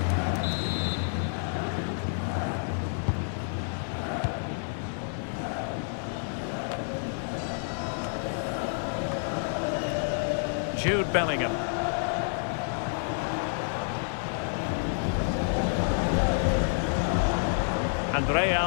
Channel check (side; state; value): right; silent; digital silence